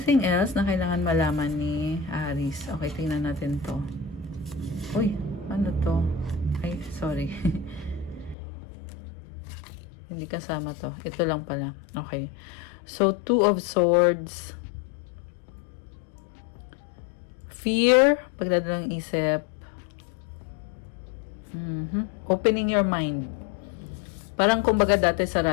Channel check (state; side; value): drops out; right; at 8.3 s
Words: else na kailangan malaman ni Aries? Okay, tingnan natin to. Uy, ano to? Ay, sorry. Hindi kasama to. Ito lang pala. Okay. So, Two of Swords. Fear, pagdadalang isip. Opening your mind. Parang kumbaga dati